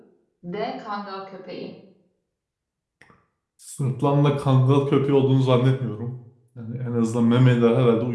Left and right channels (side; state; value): both; identical; correlation 1.00